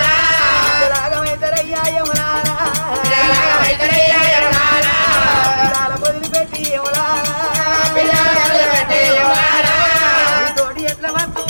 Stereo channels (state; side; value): inverted; both; correlation -1.00